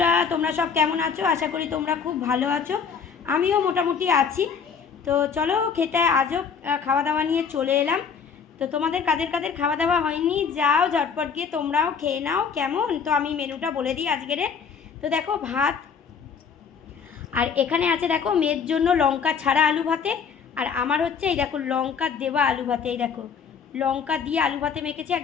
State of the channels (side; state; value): right; quieter; 6.5 dB